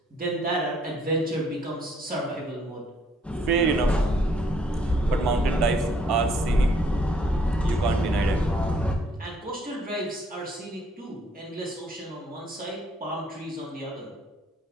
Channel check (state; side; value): normal; both; correlation 0.65